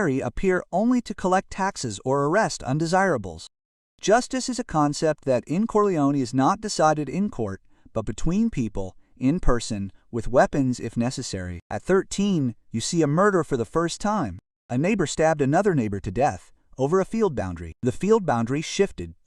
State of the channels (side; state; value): both; identical; correlation 1.00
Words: appear only to collect taxes or arrest undesirables. Justice is a concept that in Corleone is not decided in court, but between people, in person, with weapons if necessary. At 13, you see a murder for the first time. A neighbor stabbed another neighbor to death over a field boundary. The field boundary shifted